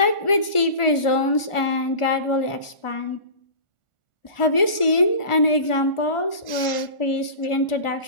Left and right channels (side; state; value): right; late; 1.4 ms